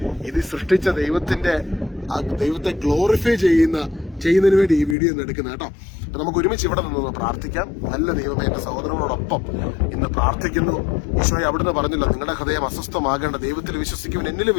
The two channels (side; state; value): right; drops out; at 5.0 s